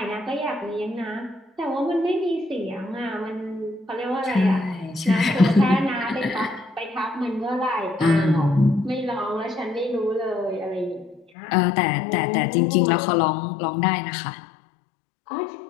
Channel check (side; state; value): right; drops out; at 11.2 s